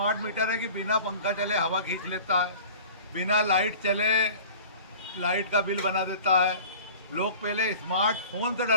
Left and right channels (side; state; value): both; inverted; correlation -0.42